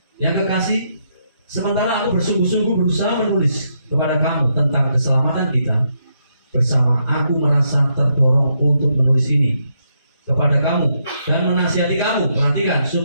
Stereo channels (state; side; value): inverted; both; correlation -0.78